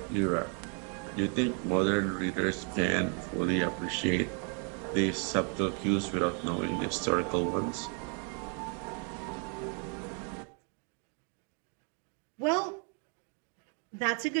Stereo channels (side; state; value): left; quieter; 39.6 dB